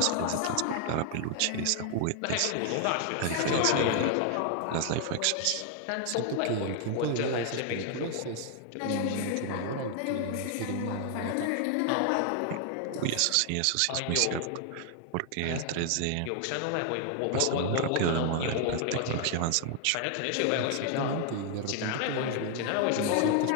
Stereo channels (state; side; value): different; both; correlation 0.00